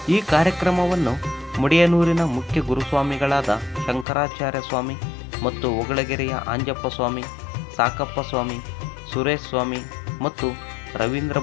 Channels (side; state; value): right; drops out; at 4.0 s